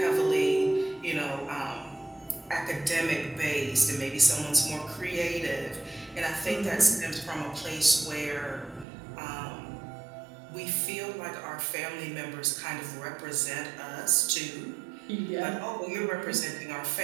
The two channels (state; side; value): drops out; left; at 8.8 s